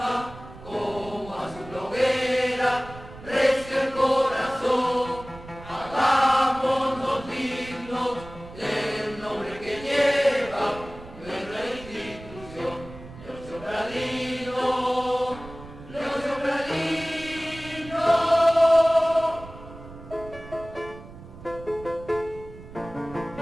como azul hoguera, recio el corazón, hagámonos dignos del nombre que lleva nuestra institución. Leocentradino, Leocentradino.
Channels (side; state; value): right; noise; rumble, 16 dB below the sound